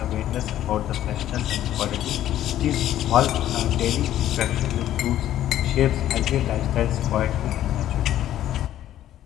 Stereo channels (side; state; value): right; quieter; 12.4 dB